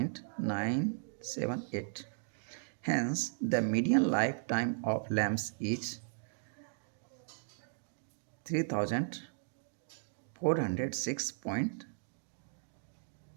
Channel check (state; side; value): silent; left; digital silence